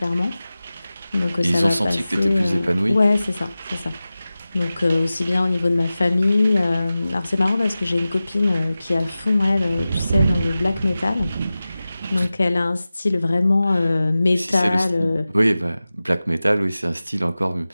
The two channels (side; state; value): both; inverted; correlation -0.96